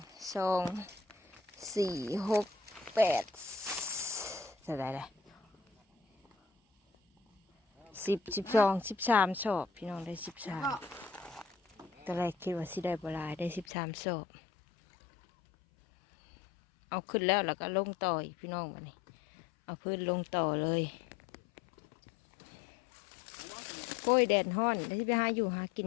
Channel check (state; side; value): drops out; right; at 13.7 s